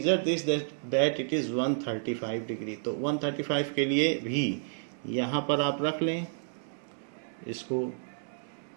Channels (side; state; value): left; silent; digital silence